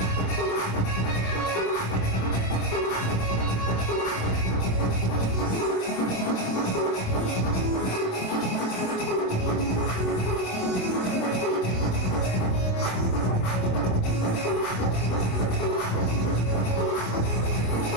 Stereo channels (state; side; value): late; right; 27 ms